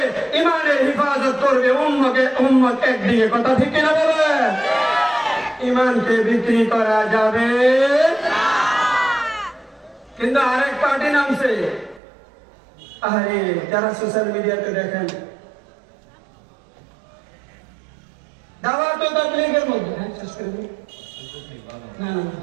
ইমানের হিফাজত করবে, উম্মত একদিকে। কথা ঠিক কিনা বলে? ইমানকে বিক্রি করা যাবে কিন্তু আরেক পার্টি নামছে। আরে যারা সোশ্যাল মিডিয়াতে দেখেন, দাওয়াত ও তাবলীগের মধ্যে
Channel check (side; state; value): left; drops out; at 12.0 s